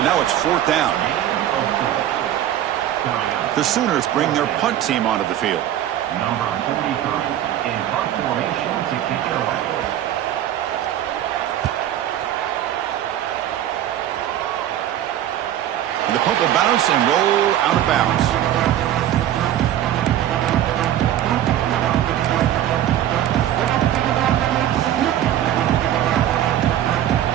now it's 4th down. The Sooners bring their punt team onto the field. Number 43 in punt formation to kick it away. And the punt will bounce and roll out of bounds.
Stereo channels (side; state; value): left; quieter; 11.7 dB